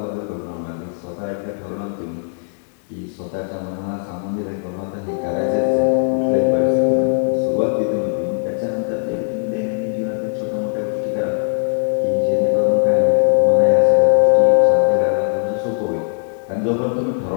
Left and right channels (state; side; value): silent; right; digital silence